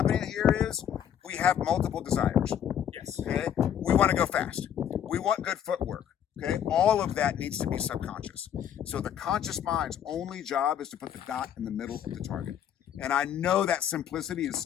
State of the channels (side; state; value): right; quieter; 9.5 dB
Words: here is we have multiple desires. Yes. Okay, we want to go fast. We want good footwork. Okay, all of that needs to be subconscious. So the conscious mind's only job is to put the dot in the middle of the target. And I know that simplicity is